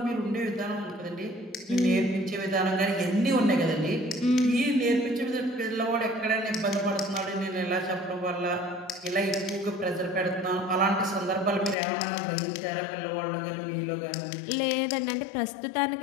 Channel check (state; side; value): drops out; right; at 11.8 s